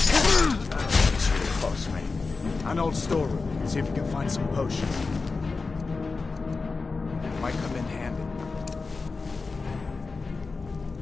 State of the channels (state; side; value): quieter; right; 4.2 dB